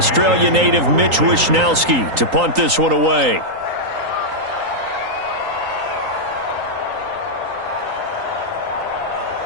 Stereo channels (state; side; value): late; left; 3.9 ms